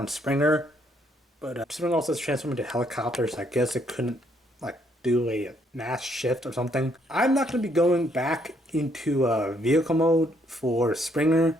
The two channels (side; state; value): both; normal; correlation 0.70